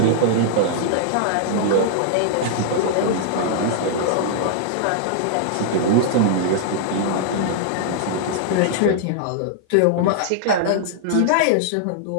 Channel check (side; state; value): both; different; correlation -0.01